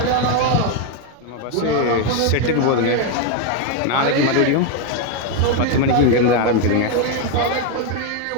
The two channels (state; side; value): different; both; correlation 0.01